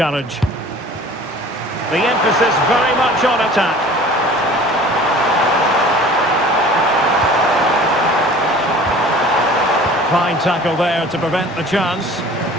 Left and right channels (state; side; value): normal; both; correlation 0.45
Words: The emphasis very much on attack. Fine tackle there to prevent the chance.